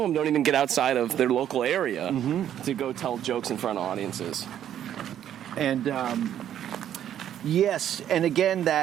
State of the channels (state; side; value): quieter; left; 10.5 dB